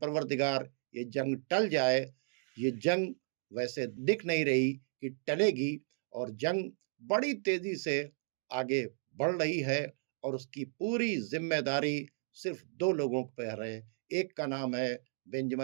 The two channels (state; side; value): silent; left; digital silence